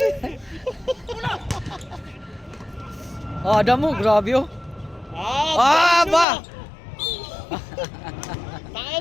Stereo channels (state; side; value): drops out; right; at 6.2 s